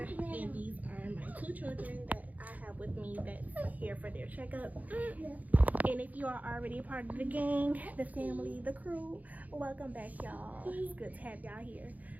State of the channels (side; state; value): left; late; 0.078 ms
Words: and these are my two children that I have with me that's here for their checkup. And if you are already a part of the gang, the family, the crew, welcome back, y'all. It's good to have y'all here.